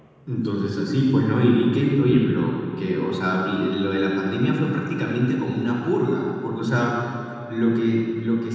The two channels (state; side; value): identical; both; correlation 1.00